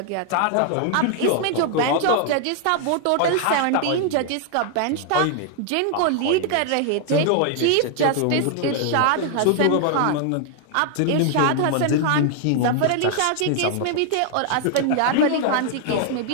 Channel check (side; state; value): both; different; correlation 0.00